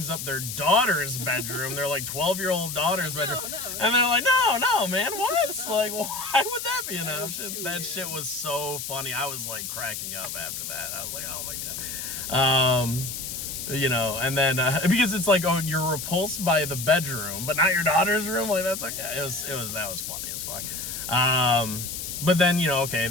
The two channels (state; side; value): noise; left; hiss, 6 dB below the sound